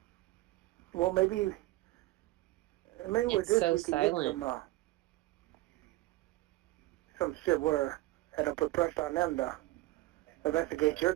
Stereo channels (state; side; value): quieter; left; 18.5 dB